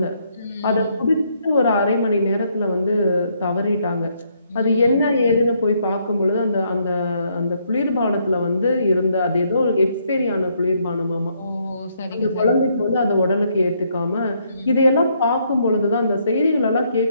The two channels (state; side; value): inverted; both; correlation -0.72